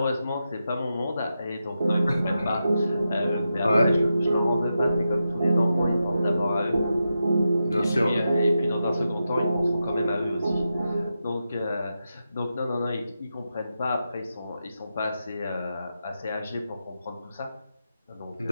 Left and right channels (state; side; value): inverted; both; correlation -0.88